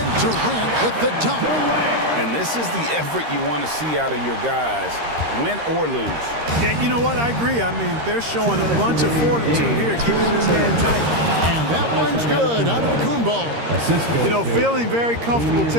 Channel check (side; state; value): left; late; 13 ms